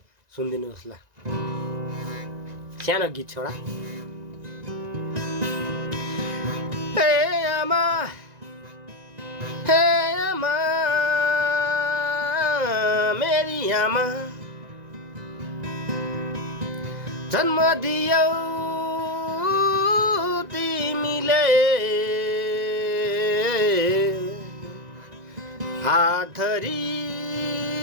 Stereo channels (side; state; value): left; late; 1.9 ms